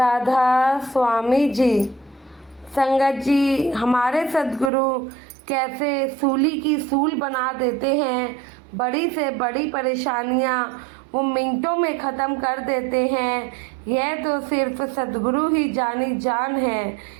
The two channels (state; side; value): drops out; left; at 4.7 s